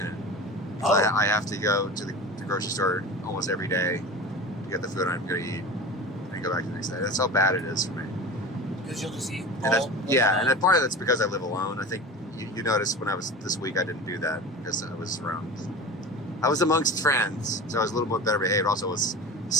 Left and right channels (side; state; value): both; normal; correlation 0.33